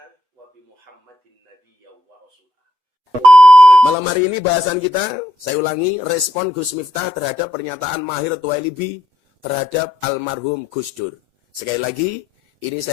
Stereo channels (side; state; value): left; late; 8.0 ms